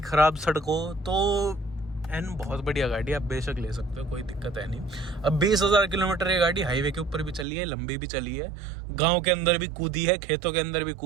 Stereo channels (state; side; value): drops out; left; at 7.5 s